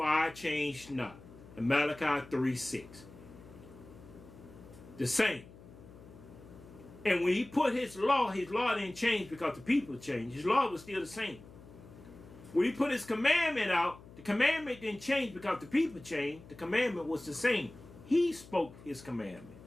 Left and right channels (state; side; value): noise; left; hum, 19 dB below the sound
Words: I change not. In Malachi 3:6. The same. And when he put his law didn't change because the people changed. His law was still the same. When he put his commandment out, the commandment didn't change because the people changed. The commandment was the same. He spoke his commandment.